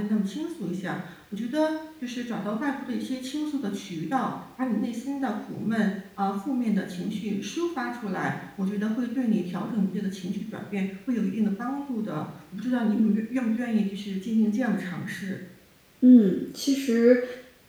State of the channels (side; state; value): both; identical; correlation 1.00